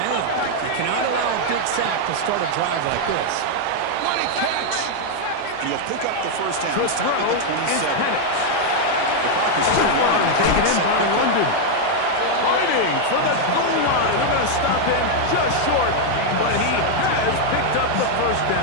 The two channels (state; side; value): different; both; correlation 0.00